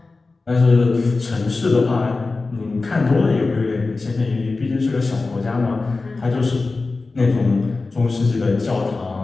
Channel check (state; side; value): quieter; right; 3.7 dB